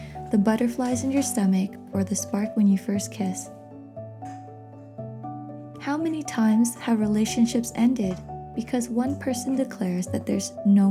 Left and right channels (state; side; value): identical; both; correlation 1.00